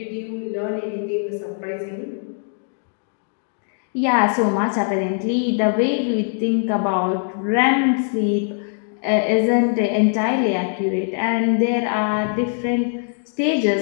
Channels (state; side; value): silent; right; 61 dB below the other